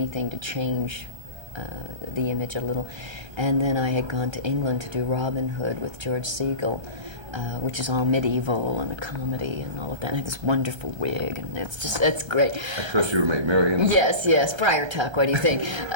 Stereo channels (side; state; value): left; late; 1.3 ms